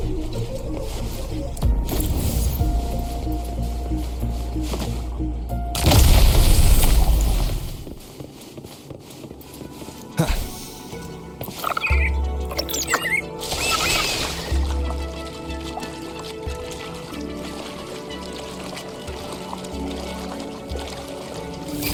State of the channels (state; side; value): identical; both; correlation 1.00